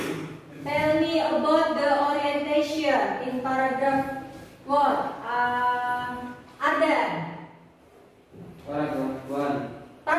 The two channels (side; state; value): both; identical; correlation 1.00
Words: tell me about the orientation in paragraph what? Ardan.